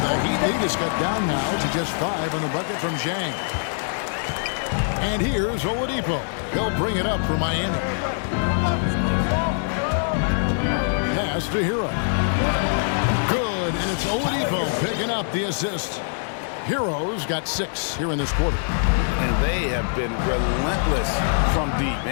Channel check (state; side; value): silent; right; digital silence